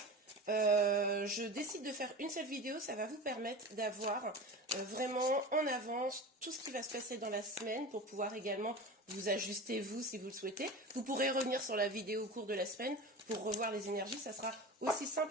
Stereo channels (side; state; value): both; normal; correlation 0.31